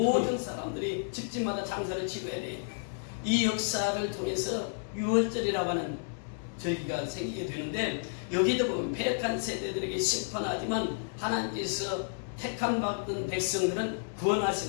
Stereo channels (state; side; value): silent; right; digital silence